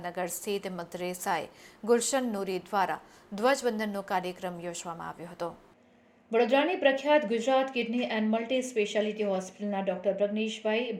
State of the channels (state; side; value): identical; both; correlation 1.00